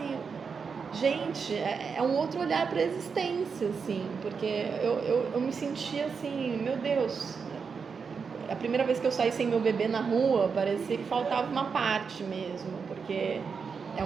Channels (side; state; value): left; quieter; 5.7 dB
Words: gente, é um outro olhar para a existência, assim, porque eu me sentia assim, meu Deus. A primeira vez que eu saí sem meu bebê na rua, parecia que faltava uma parte mesmo, porque é